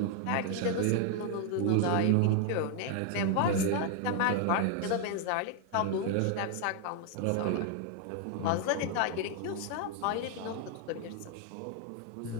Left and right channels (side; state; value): both; different; correlation 0.00